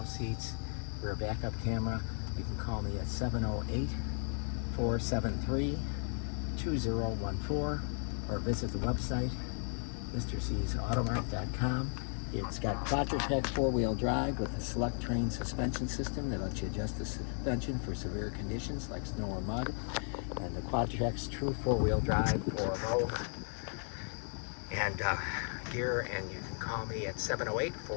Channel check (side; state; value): right; silent; 54 dB below the other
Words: seats, rear backup camera. You can call me at 708-473-2014 or visit the website, mrcsautomart.com. It's got Quadra four-wheel drive with a Selec-Terrain suspension system that lets you adjust the suspension for severe conditions like snow or mud. And the Quadra true four-wheel drive for low and gear. And you can call me at